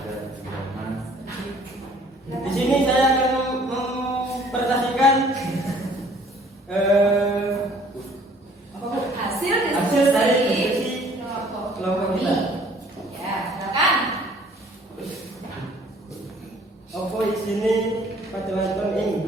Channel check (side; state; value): both; normal; correlation 0.56